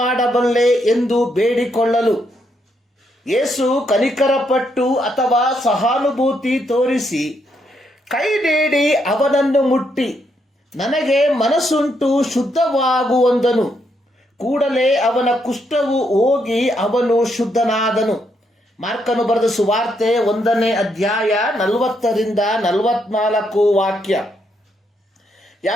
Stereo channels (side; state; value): both; normal; correlation 0.77